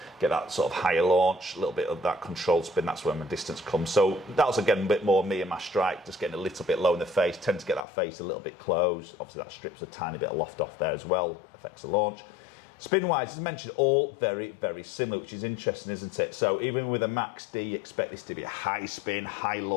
Get that sort of higher launch, a little bit of that controlled spin. That's where my distance comes. So that was, again, a bit more me and my strike, just getting a little bit low in the face. Tend to get that face a little bit closed. Obviously, that strips a tiny bit of loft off there as well. Affects the launch. Spin-wise, as mentioned, all very, very similar, which is interesting, isn't it? So even with a Max D, you expect this to be a high spin, high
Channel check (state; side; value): drops out; right; at 7.9 s